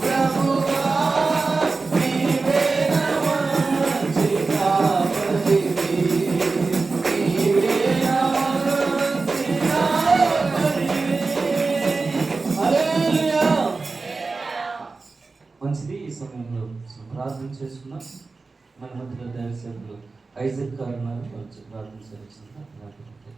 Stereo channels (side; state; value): left; quieter; 4.0 dB